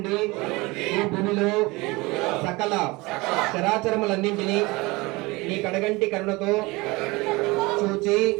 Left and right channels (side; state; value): left; quieter; 23.4 dB